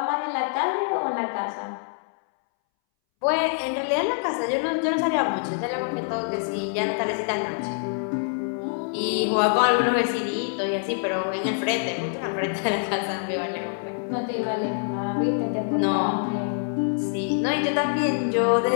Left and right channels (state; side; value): silent; right; 62 dB below the other